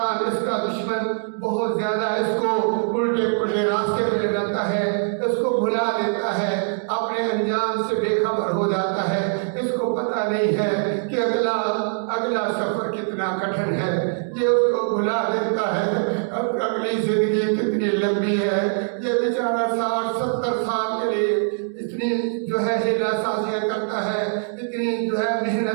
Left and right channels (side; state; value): left; silent; digital silence